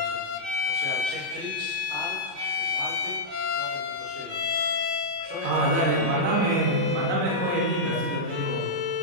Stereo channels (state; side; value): late; left; 37 ms